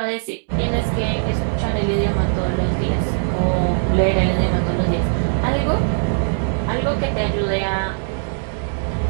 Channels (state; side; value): silent; left; digital silence